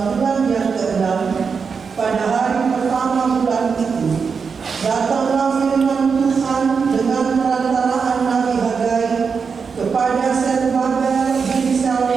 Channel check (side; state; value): left; quieter; 5.6 dB